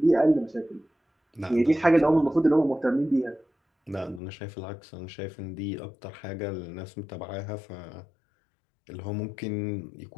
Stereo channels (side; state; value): right; drops out; at 4.2 s